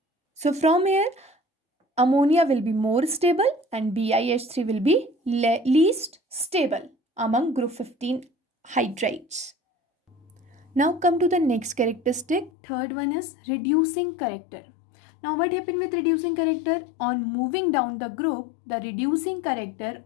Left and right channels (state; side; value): drops out; right; at 12.5 s